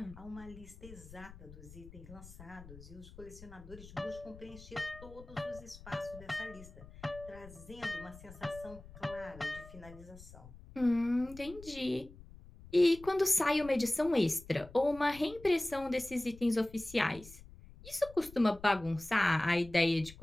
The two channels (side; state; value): left; noise; rumble, 18 dB below the sound